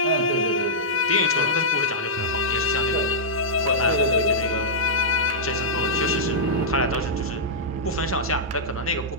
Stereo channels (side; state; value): both; normal; correlation -0.11